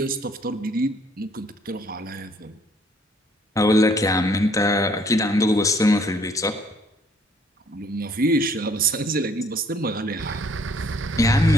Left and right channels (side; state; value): both; normal; correlation 0.61